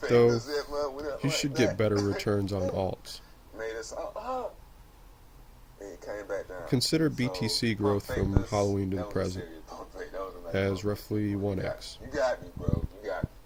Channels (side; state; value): both; identical; correlation 1.00